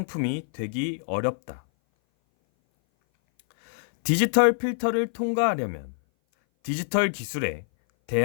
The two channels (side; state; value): right; silent; 58 dB below the other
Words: 되기 어렵다. 디지털 필터를 통과하려면 디지털 기술에